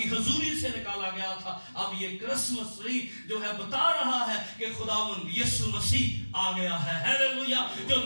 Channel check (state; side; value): inverted; both; correlation -1.00